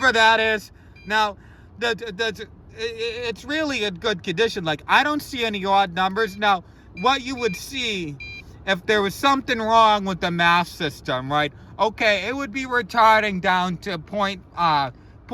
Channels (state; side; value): identical; both; correlation 1.00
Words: that is. Now, it's really in good condition. Like, I don't see any odd numbers. Now, what you would see if there was something wrong with the mass system, right? Okay, it would be retarding down to 0.5